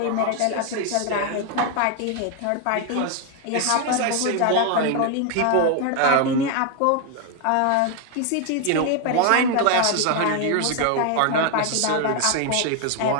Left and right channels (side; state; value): both; different; correlation 0.01